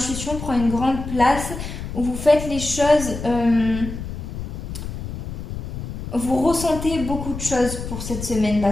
prend une grande place, où vous faites les choses, vous ressentez beaucoup de choses pour cette semaine,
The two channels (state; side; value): noise; left; rumble, 7 dB below the sound